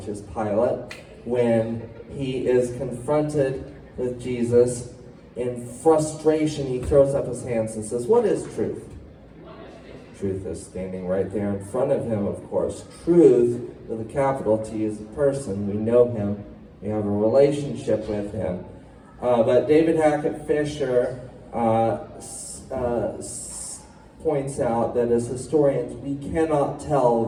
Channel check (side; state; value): both; identical; correlation 1.00